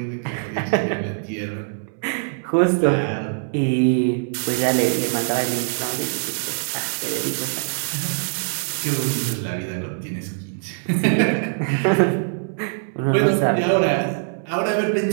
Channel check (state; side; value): silent; left; digital silence